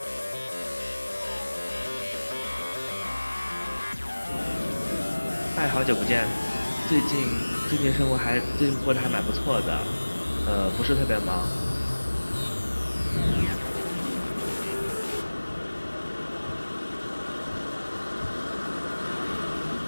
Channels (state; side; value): inverted; both; correlation -1.00